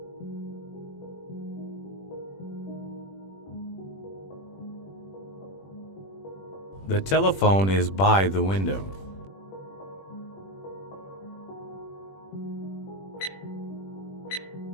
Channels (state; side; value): late; right; 21 ms